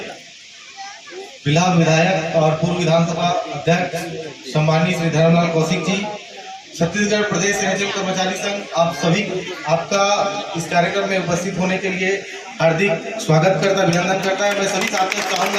फिलहाल विधायक और पूर्व विधानसभा अध्यक्ष सम्मानीय श्री धर्मलाल कौशिक जी, छत्तीसगढ़ प्रदेश एनएचएम कर्मचारी संघ, आप सभी आपका इस कार्यक्रम में उपस्थित होने के लिए हार्दिक स्वागत करता, अभिनंदन करता है। मैं सभी साथियों से चाहूंगा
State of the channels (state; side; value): identical; both; correlation 1.00